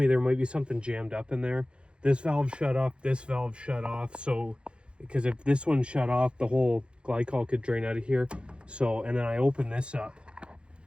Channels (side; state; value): left; late; 0.056 ms